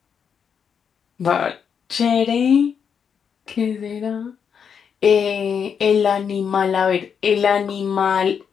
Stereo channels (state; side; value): quieter; right; 7.1 dB